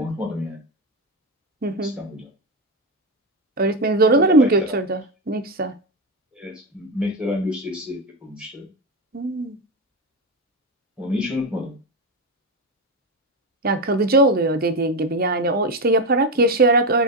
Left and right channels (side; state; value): both; normal; correlation 0.12